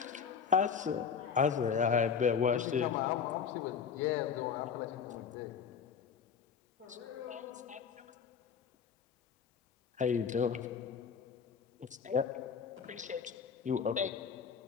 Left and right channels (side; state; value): right; quieter; 6.7 dB